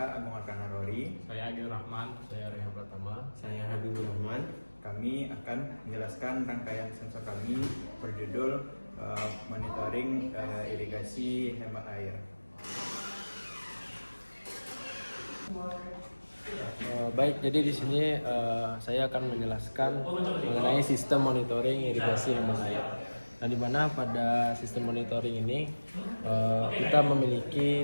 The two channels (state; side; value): inverted; both; correlation -1.00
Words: Agung Arkana Rory. Saya Agil Rahman, saya Rehan Pratama. Saya Habibur Rahman. Kami akan menjelaskan rangkaian sensor kami berjudul monitoring irigasi hemat air. Baik, jadi di sini saya akan menjelaskan mengenai sistem monitoring irigasi hemat air. Nah, di mana pada sistem monitoring ini kita